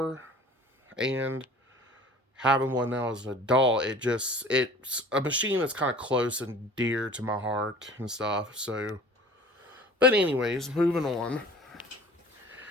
And having one now as an adult, it's a machine that's kind of close and dear to my heart and stuff. So, but anyways, moving on.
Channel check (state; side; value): normal; both; correlation 0.45